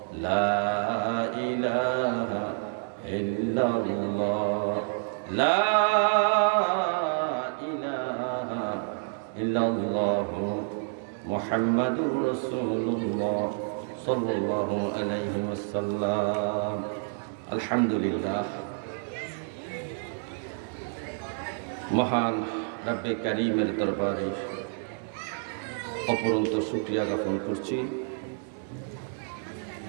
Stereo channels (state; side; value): silent; left; 59 dB below the other